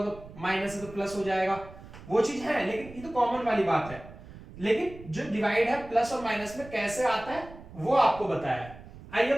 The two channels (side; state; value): right; noise; rumble, 17 dB below the sound